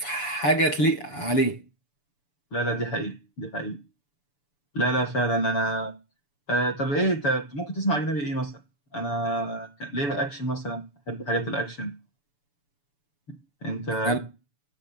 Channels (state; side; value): late; right; 7.0 ms